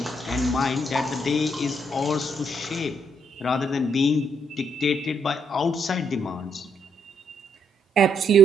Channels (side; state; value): both; normal; correlation 0.73